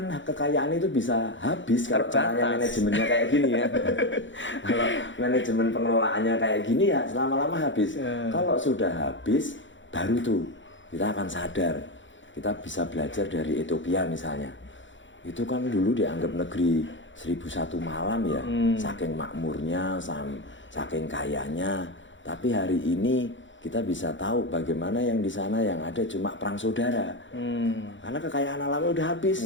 kekayaan itu bisa habis kalau caranya manajemennya kayak gini ya. Kalau manajemen pengelolaannya kayak gini ya lama-lama habis. Kalau sudah habis, baru tuh kita akan sadar. Kita bisa belajar dari Ethiopia misalnya. Itu kan dulu dianggap negeri 1001 malam ya. Saking makmurnya, saking kayanya. Tapi hari ini kita bisa tahu bagaimana yang di sana yang ada cuma perang saudara. Karena kekayaan alamnya udah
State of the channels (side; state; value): right; late; 0.55 ms